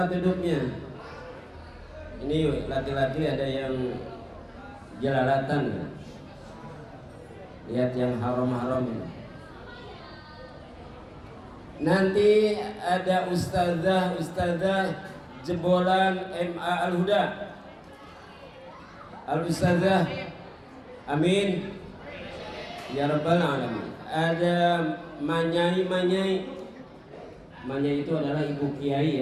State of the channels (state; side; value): identical; both; correlation 1.00